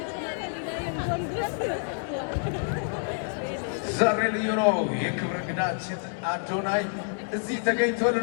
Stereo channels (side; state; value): right; silent; digital silence